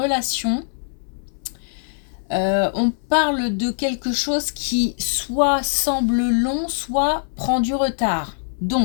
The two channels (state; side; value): silent; right; 64 dB below the other